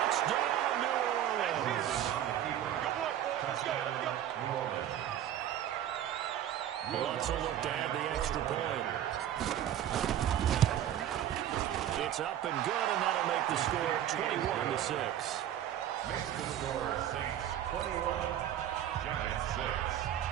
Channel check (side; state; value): left; quieter; 11.1 dB